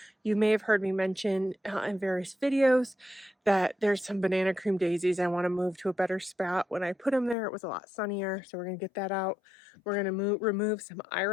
you may have heard me mention in various videos that there's some banana cream daisies I want to move to a better spot. When I put them there, it was a lot sunnier, so we're going to get that out. We're going to remove some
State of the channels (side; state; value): right; drops out; at 7.4 s